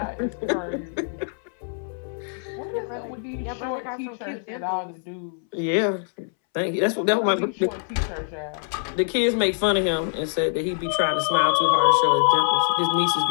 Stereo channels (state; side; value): silent; right; 62 dB below the other